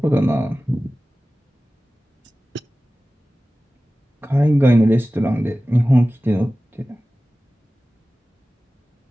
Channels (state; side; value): normal; both; correlation 0.96